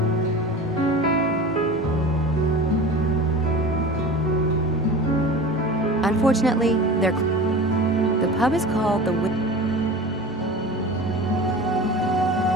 Unfortunately, the pub is called the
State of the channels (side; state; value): both; normal; correlation 0.35